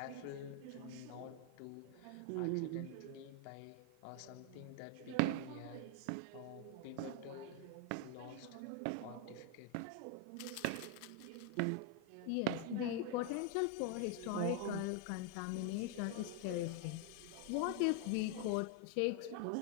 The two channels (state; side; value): different; both; correlation 0.01